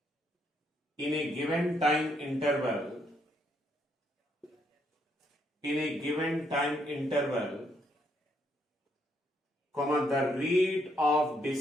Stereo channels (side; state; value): both; normal; correlation 0.73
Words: comma, the rate of